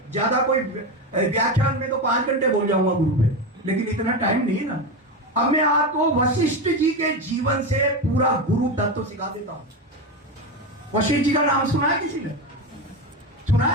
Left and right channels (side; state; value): both; normal; correlation 0.17